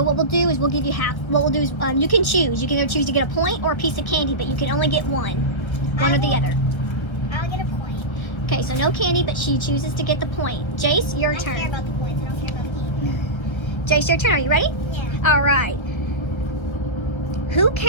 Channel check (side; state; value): right; late; 1.4 ms